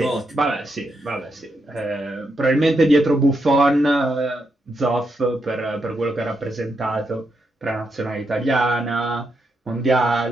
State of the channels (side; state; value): both; normal; correlation 0.82